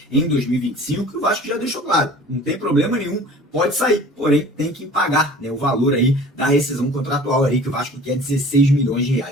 em 2025, que o Vasco já deixou claro, não tem problema nenhum, pode sair, porém tem que pagar, né, o valor aí da rescisão contratual aí que o Vasco quer, 16 milhões de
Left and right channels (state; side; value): normal; both; correlation 0.45